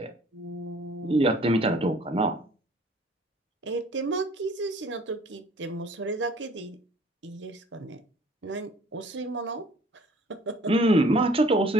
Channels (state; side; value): normal; both; correlation 0.54